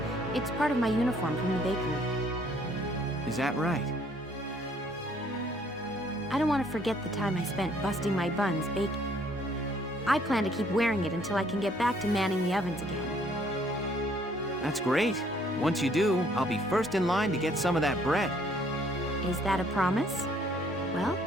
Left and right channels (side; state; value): both; normal; correlation 0.63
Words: part of my uniform from the bakery. Is that right? I don't want to forget the time I spent busting my buns baking. I plan to keep wearing it until I can get back to manning the ovens again. That's great. Once you do, I'll be first in line to get some of that bread. Is that a promise? Well,